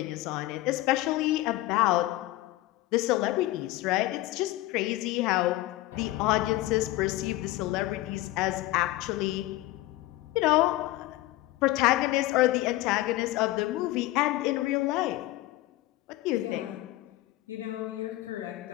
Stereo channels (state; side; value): quieter; right; 17.3 dB